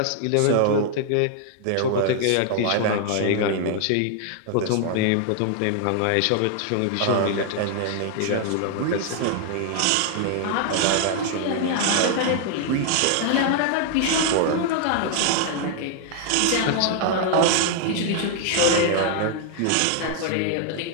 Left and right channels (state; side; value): different; both; correlation 0.00